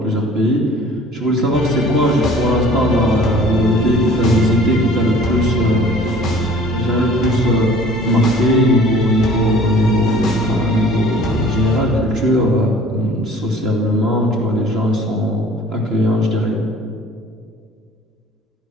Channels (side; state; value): both; normal; correlation 0.49